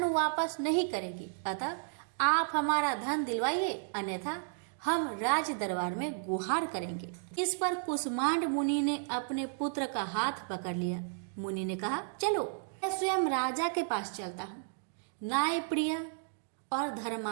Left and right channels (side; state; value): left; silent; digital silence